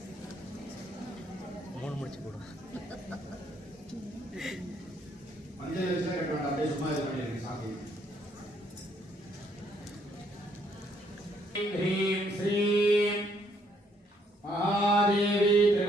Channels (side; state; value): both; normal; correlation 0.69